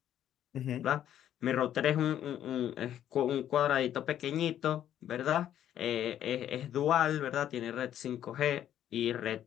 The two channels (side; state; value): right; quieter; 10.9 dB